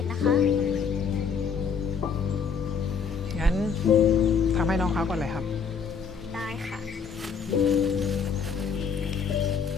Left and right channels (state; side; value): quieter; right; 6.0 dB